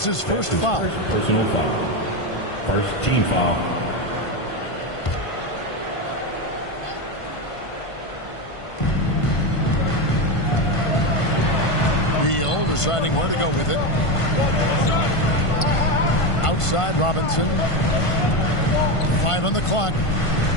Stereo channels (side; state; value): right; late; 1.5 ms